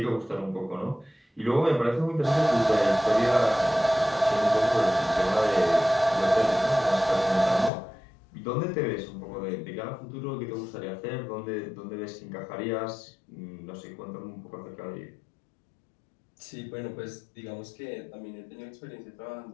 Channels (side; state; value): right; drops out; at 7.7 s